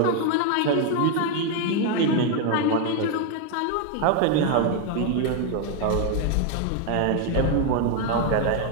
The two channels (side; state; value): both; different; correlation 0.00